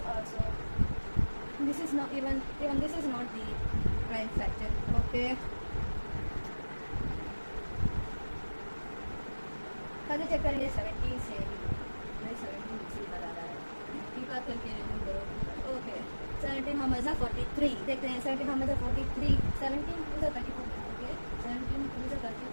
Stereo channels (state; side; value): inverted; both; correlation -1.00